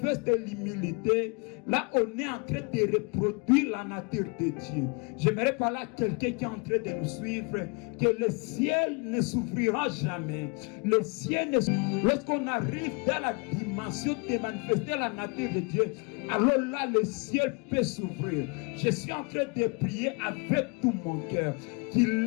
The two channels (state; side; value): quieter; right; 32.2 dB